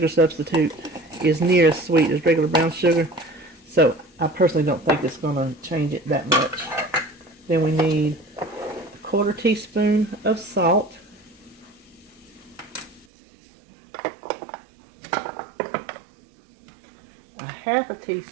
substitute is near as sweet as regular brown sugar, so I personally don't think it's going to change it that much. Then we need 1/4 teaspoon of salt. A 1/2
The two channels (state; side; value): drops out; left; at 13.1 s